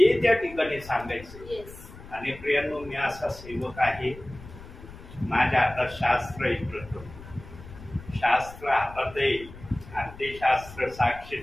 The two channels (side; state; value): left; noise; rumble, 17 dB below the sound